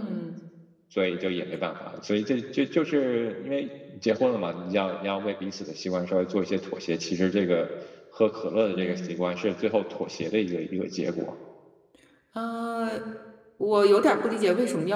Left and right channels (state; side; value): identical; both; correlation 1.00